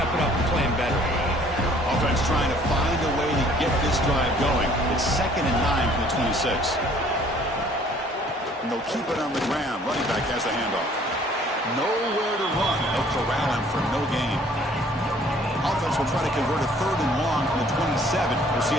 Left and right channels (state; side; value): normal; both; correlation 0.57